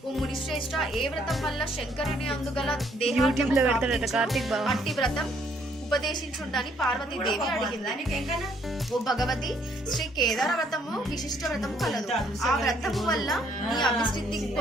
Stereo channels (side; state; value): both; normal; correlation 0.67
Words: ఓ మునిశ్రేష్ఠ, ఏ వ్రతం వల్ల శంకరుని అందుగల అట్టి వ్రతం ఉపదేశించుండని పార్వతీదేవి అడిగింది. ఓ భగవతి, శ్రీ కేదార వ్రతము విశిష్ట వ్రతము కలదు. ఆ వ్రతము వల్ల నీ అభివృద్ధి